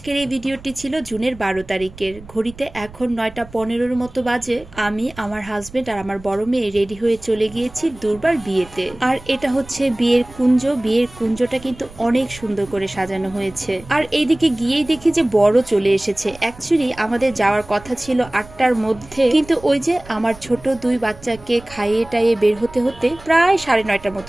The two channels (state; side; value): noise; right; rumble, 20 dB below the sound